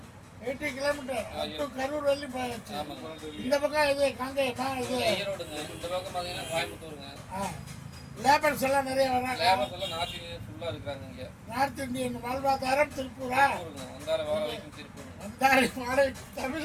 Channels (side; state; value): both; identical; correlation 1.00